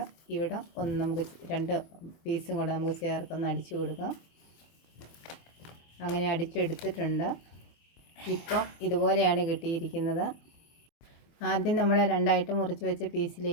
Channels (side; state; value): right; late; 24 ms